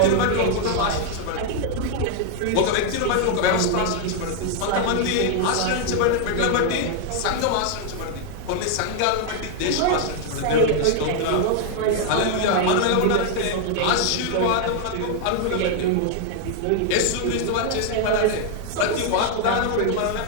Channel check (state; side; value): different; both; correlation 0.00